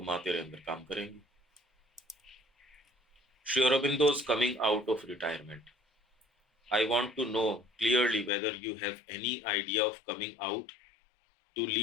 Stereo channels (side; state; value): right; drops out; at 8.3 s